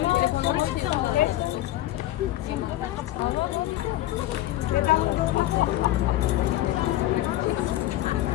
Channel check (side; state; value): right; quieter; 14.9 dB